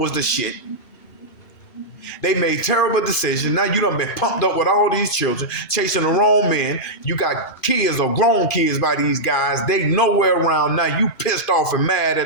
the shit. They made terrible decisions. Now you done been pumped up with all these children, chasing the wrong men. You got kids or grown kids by these guys. They nowhere around. Now you pissed off and mad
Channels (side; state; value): right; late; 2.5 ms